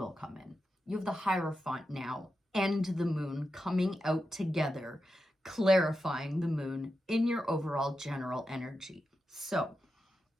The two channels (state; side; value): normal; both; correlation 0.89